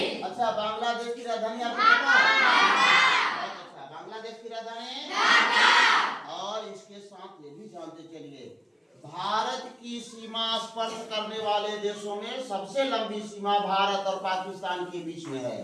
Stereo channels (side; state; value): both; identical; correlation 1.00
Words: अच्छा, बांग्लादेश की राजधानी आपको पता है? अच्छा, बांग्लादेश की राजधानी, और इसके साथ ये भी जानते चलिए, भारत की सीमा स्पर्श करने वाले देशों में सबसे लंबी सीमा भारत और पाकिस्तान के बीच में है।